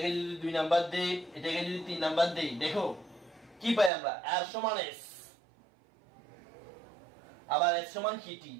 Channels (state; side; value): drops out; left; at 3.9 s